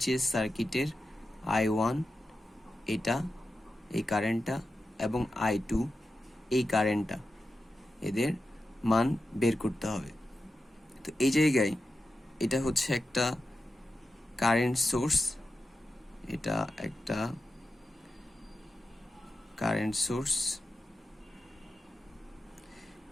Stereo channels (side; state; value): both; normal; correlation 0.91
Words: সার্কিটের I1 এটা এই কারেন্টটা এবং I2 এই কারেন্টটা, এদের মান বের করতে হবে। তো এই জায়গায় এটা হচ্ছে একটা কারেন্ট সোর্স, এটা একটা কারেন্ট সোর্স